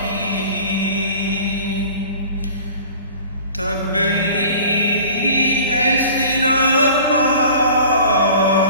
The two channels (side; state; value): both; inverted; correlation -0.44